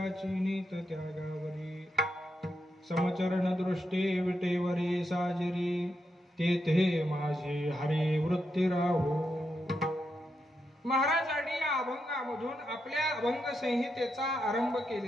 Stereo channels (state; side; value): normal; both; correlation 0.84